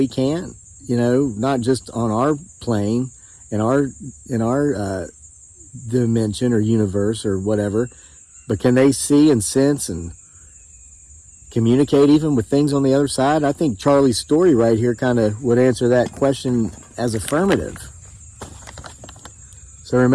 can't? You know, not just on our plane, in our dimension or universe or whatever, but can they see and sense and communicate even with things on the other side? I think Charlie's story right here kind of would answer that question as affirmative. So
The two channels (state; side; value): identical; both; correlation 1.00